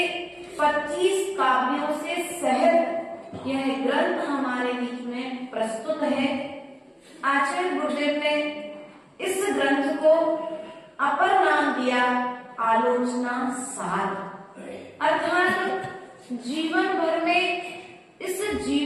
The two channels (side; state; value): both; identical; correlation 1.00